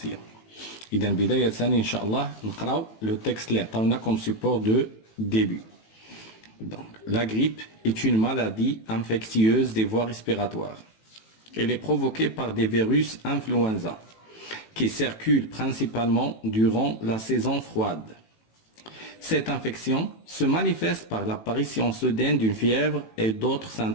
إذا بداية إن شاء الله نقراو لو تكست اللي عطاونا كوم سيبور دو ديبي. Donc, la grippe est une maladie infectieuse des voies respiratoires. Elle est provoquée par des virus influenza qui circulent principalement durant la saison froide. Cette infection se manifeste par l'apparition soudaine d'une fièvre et d'autres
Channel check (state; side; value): late; right; 18 ms